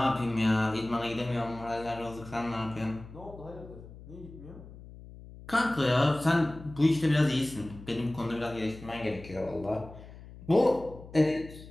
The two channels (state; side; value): noise; left; hum, 17 dB below the sound